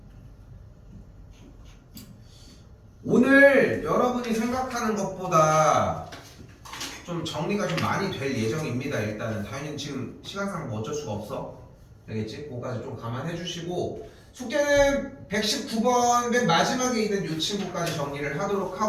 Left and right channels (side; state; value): both; identical; correlation 1.00